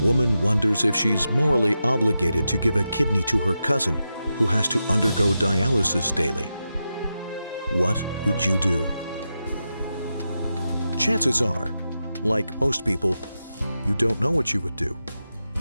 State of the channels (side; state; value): both; inverted; correlation -0.89